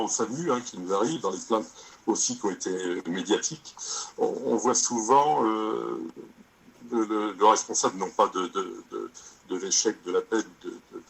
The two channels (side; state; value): both; identical; correlation 1.00